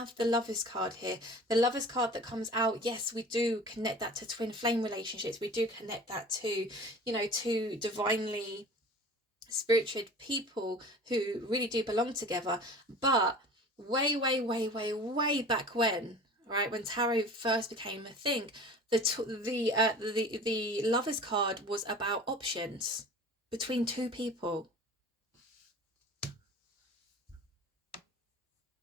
the Lovers card here. The Lovers card that comes out, yes, we do connect that to twin flame relationships. We do connect that to, you know, to divinely spiritual people who really do belong together. But way back when, right, when tarot first became a thing, the Lovers card was about options between two people.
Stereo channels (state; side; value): normal; both; correlation 0.41